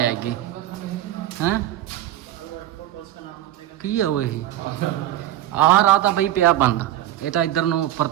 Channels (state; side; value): quieter; left; 13.1 dB